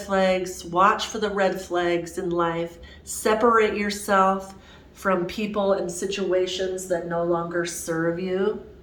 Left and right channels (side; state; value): both; identical; correlation 1.00